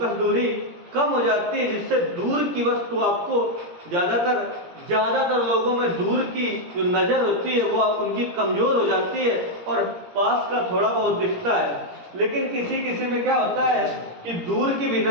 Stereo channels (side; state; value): left; late; 17 ms